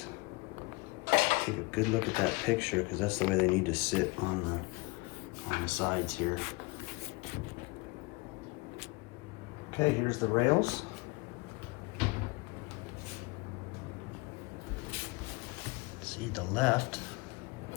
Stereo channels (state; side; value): quieter; right; 26.2 dB